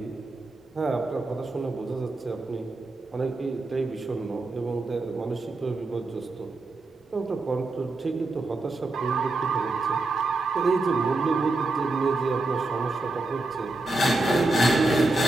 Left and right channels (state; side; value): quieter; left; 3.0 dB